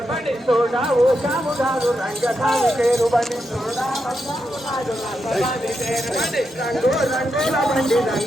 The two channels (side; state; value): both; normal; correlation 0.85